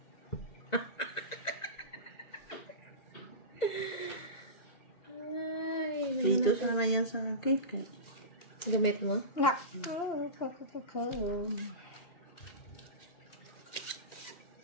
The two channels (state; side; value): late; right; 1.9 ms